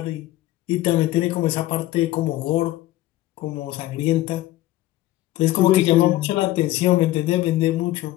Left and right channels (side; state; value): right; quieter; 16.0 dB